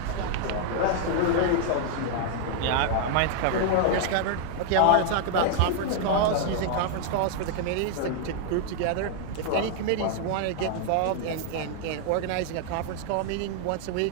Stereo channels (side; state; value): both; different; correlation -0.01